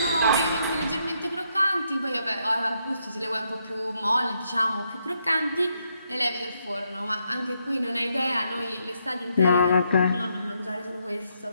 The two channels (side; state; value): both; inverted; correlation -0.77